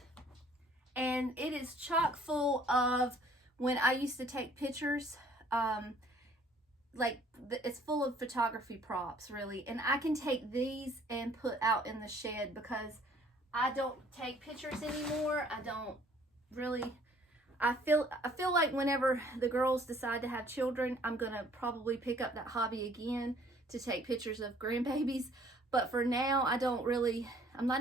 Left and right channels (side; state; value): both; normal; correlation 0.58